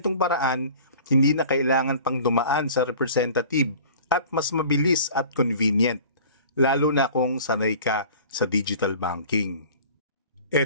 paraan, hindi na kailangan pang dumaan sa representative at mas mabilis at convenient, lalo na kung sanay ka sa digital banking.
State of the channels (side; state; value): both; inverted; correlation -0.45